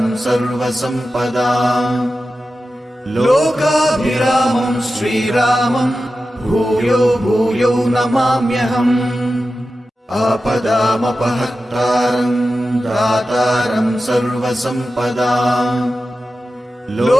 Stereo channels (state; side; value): normal; both; correlation 0.93